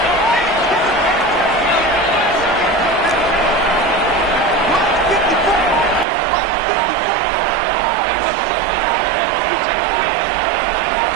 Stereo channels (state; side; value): drops out; left; at 6.1 s